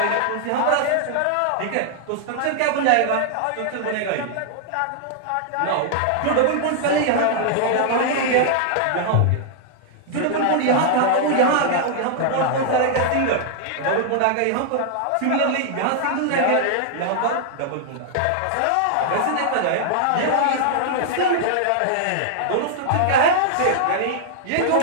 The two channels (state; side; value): different; both; correlation -0.01